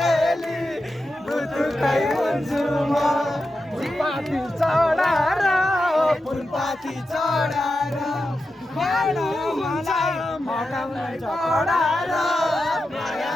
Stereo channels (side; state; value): both; normal; correlation 0.90